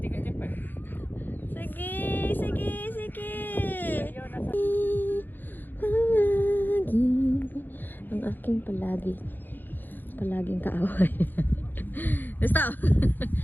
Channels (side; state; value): right; late; 0.090 ms